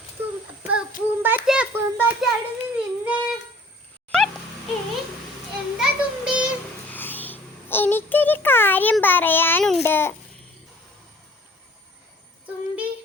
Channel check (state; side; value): normal; both; correlation 0.52